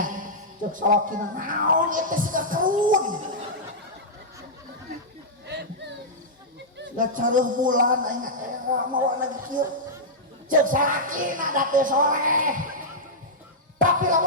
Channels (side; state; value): both; normal; correlation -0.09